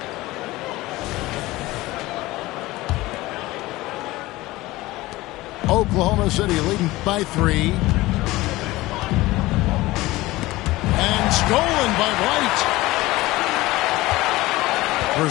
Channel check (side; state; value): right; quieter; 18.9 dB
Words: Oklahoma City leading by 3. And stolen by White.